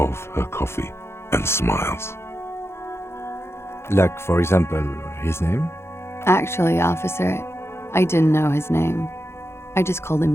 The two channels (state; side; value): late; right; 0.12 ms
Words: her coffee and smiles. Like, for example, his name? Actually, officer, I didn't know his name. I just called